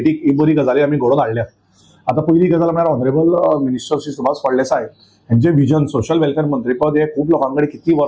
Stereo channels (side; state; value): both; identical; correlation 1.00